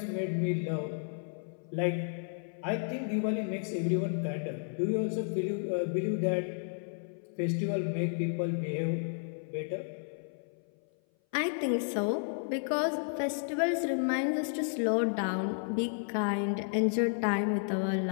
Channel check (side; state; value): right; silent; 56 dB below the other